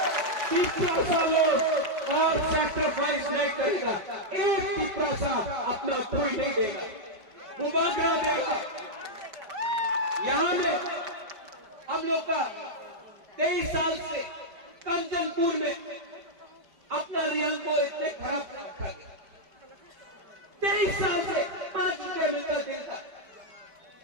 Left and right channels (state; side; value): late; left; 5.1 ms